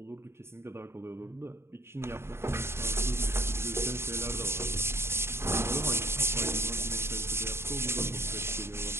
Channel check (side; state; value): left; late; 0.12 ms